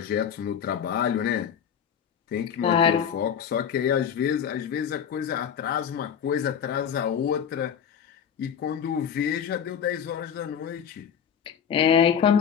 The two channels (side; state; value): right; quieter; 8.0 dB